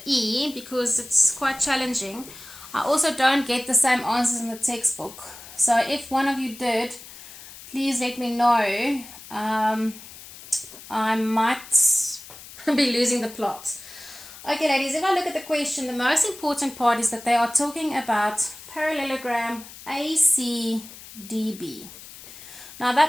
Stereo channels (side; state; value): left; noise; hiss, 17 dB below the sound